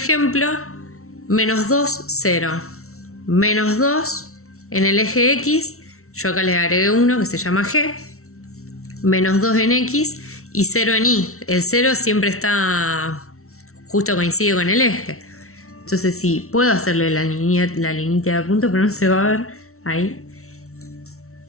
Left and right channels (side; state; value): right; late; 0.63 ms